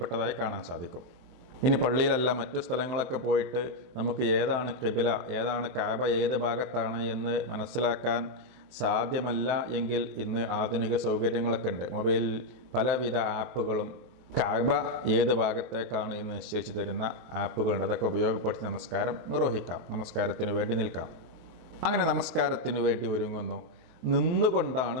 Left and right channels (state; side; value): late; left; 23 ms